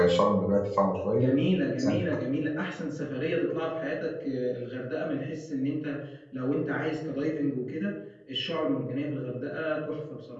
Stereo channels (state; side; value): identical; both; correlation 1.00